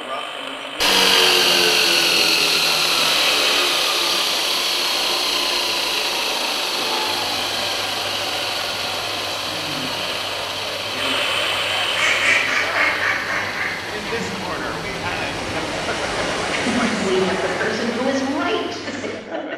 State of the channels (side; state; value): both; identical; correlation 1.00